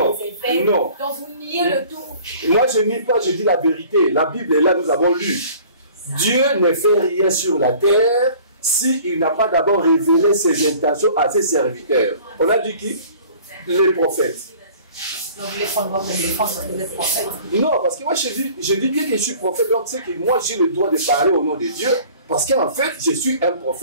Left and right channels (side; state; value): both; inverted; correlation -0.49